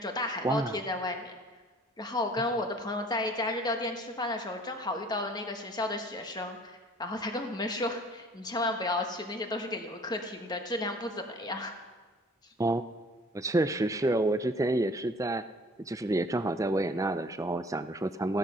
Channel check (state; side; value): normal; both; correlation 0.52